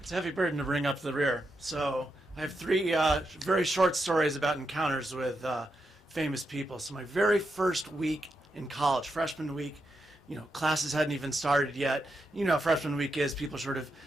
a heavy burden to bring up the rear. So I have 3 very short stories about encounters with famous people. So my very first week in college, freshman week, classes hadn't even started yet. You know how freshman week is, people sort of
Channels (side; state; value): both; normal; correlation 0.85